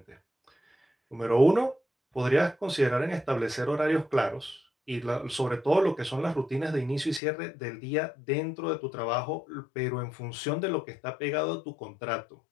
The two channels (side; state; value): right; drops out; at 7.2 s